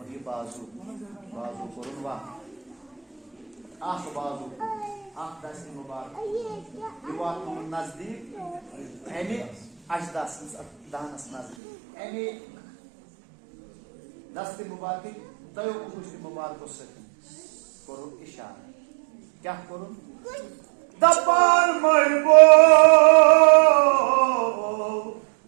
ये बाजू कोरुन वा आख बाजू आख दस्ती मुबारक ये वात नजदीक अमे अजदास दानस नजदीक अमे दस्ती मुबारक तय गुश्ती मुबारक करुन इशारा क्या करुन दपान मरबो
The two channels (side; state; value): left; drops out; at 11.6 s